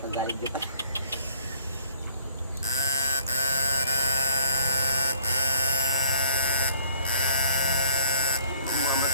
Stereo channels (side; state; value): both; inverted; correlation -0.58